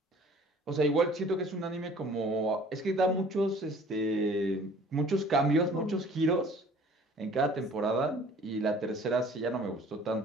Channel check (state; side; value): normal; both; correlation 0.51